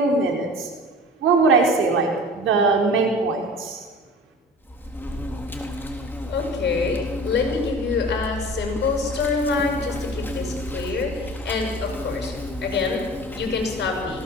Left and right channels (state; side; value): normal; both; correlation 0.39